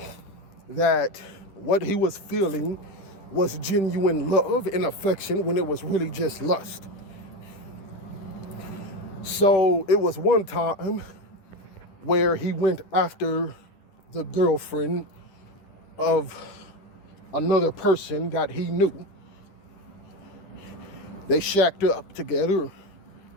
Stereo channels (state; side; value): late; right; 10 ms